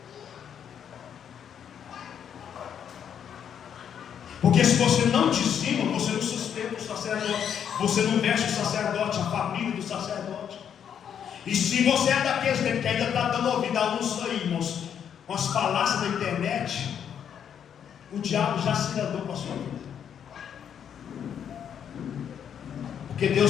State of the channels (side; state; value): right; quieter; 8.5 dB